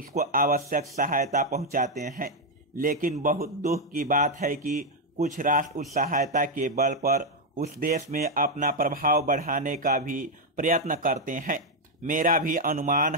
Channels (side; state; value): both; normal; correlation 0.02